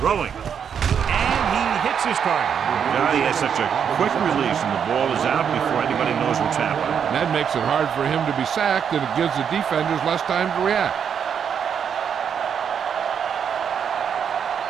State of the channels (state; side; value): quieter; left; 7.7 dB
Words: Throwing. And he hits his target. God, he has such a quick release, and the ball is out before anybody knows what's happening. And that makes it hard for him to be sacked, and it gives the defenders less time to react.